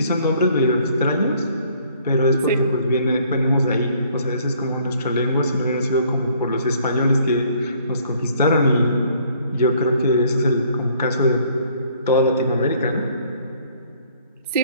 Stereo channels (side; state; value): both; inverted; correlation -0.61